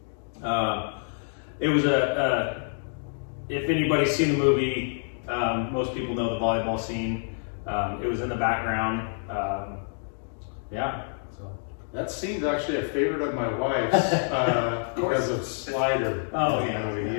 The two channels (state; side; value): silent; right; digital silence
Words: It was if anybody's seen the movie, most people know the volleyball scene. It was in the background. Yeah. So. That scene's actually a favorite of my wife's because of Slider. Oh yeah.